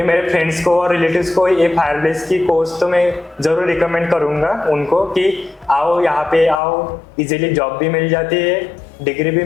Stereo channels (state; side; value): drops out; right; at 6.6 s